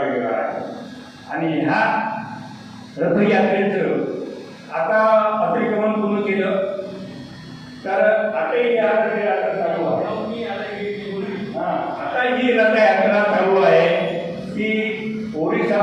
वेगळा आहे. आणि ह्या रथयात्रेचं आता अतिक्रमण पूर्ण केलं तर आताही या रथयात्रा चालू आहे. आता ही रथयात्रा चालू आहे की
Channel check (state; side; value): identical; both; correlation 1.00